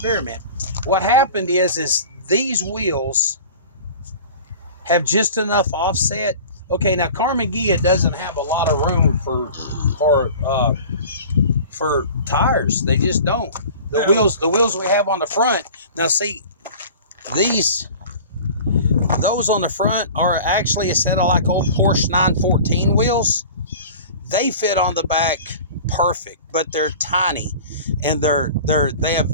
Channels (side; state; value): both; inverted; correlation -0.40